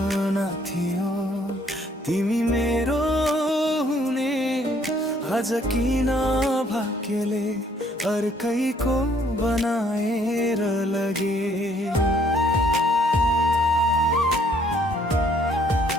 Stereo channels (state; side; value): normal; both; correlation 0.64